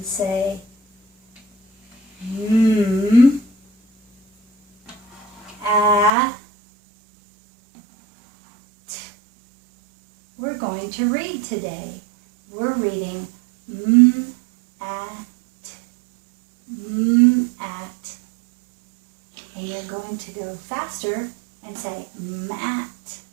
say we're going to read today. We're reading at. And you're going to go faster and say mat.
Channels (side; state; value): left; drops out; at 6.1 s